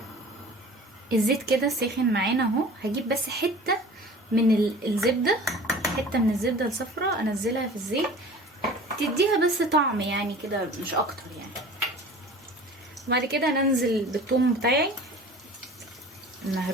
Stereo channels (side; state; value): both; normal; correlation 0.42